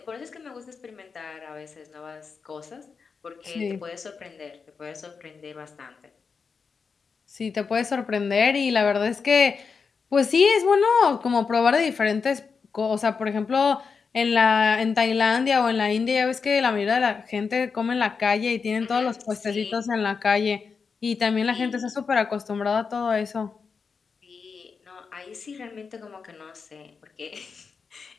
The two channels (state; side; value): quieter; right; 5.4 dB